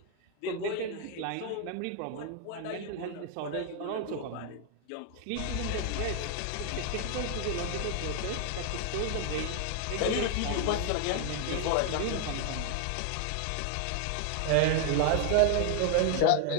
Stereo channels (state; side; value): different; both; correlation 0.00